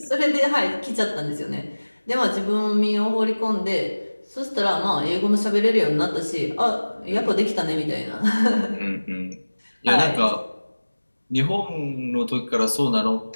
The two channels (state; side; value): inverted; both; correlation -1.00